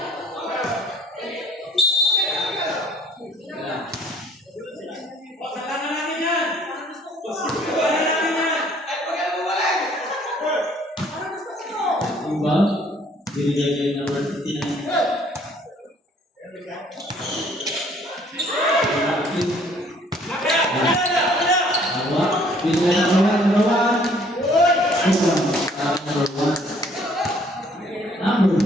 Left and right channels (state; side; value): normal; both; correlation 0.59